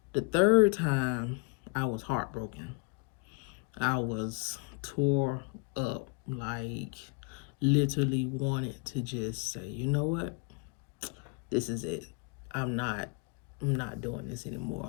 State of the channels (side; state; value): right; quieter; 31.9 dB